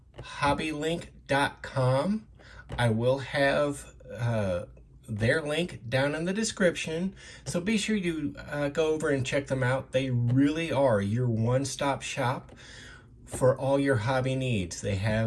HobbyLinc.com. I will have their link down in the description, so be sure you go over and check them out. They really are your one-stop shop for all your hobby needs. They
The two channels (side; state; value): both; identical; correlation 1.00